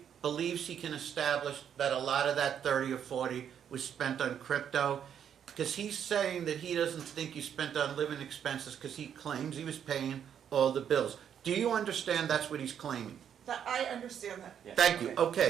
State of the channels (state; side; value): quieter; left; 8.7 dB